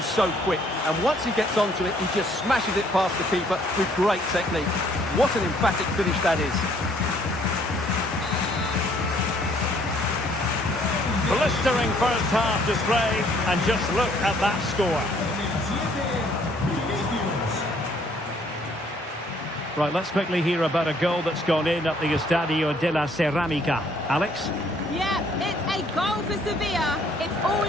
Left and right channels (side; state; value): both; normal; correlation 0.63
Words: so quick. And once he gets onto it, he just smashes it past the keeper with great technique. What an emphatic finish that is. Blistering first half display, and just look at that score. Right, let's quickly hear about a goal that's gone in at the Estadio de la Ceramica. Alex? Yeah, it's a goal for Sevilla. It's all